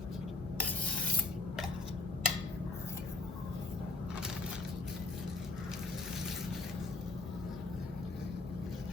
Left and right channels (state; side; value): quieter; right; 3.4 dB